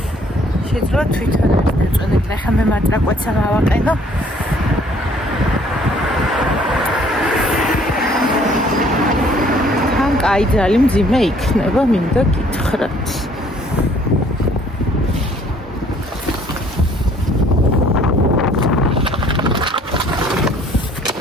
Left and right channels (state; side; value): normal; both; correlation 0.60